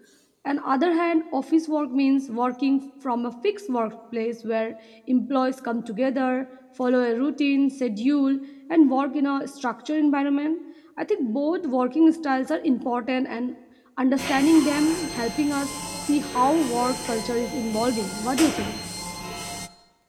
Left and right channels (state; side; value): identical; both; correlation 1.00